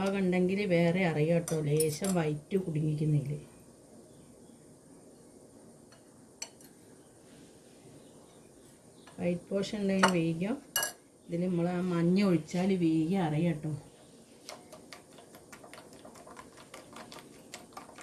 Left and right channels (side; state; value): both; identical; correlation 1.00